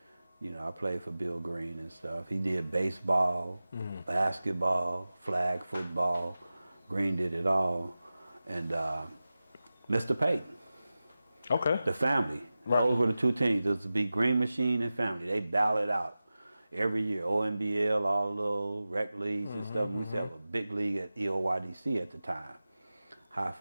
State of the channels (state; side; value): inverted; both; correlation -0.95